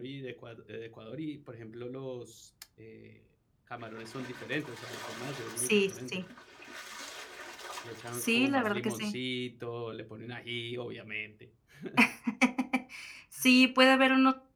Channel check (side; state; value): both; identical; correlation 1.00